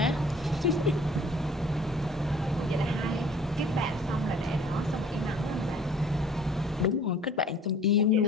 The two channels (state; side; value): normal; both; correlation 0.51